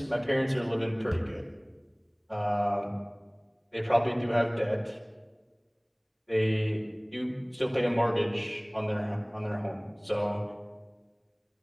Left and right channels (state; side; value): identical; both; correlation 1.00